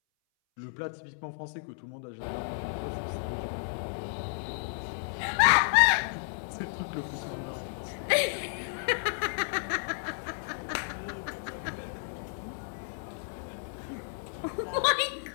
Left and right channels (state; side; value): silent; right; 56 dB below the other